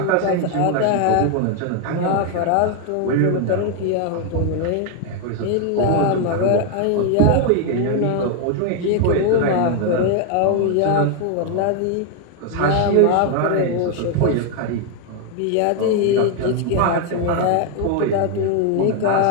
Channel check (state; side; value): different; both; correlation 0.01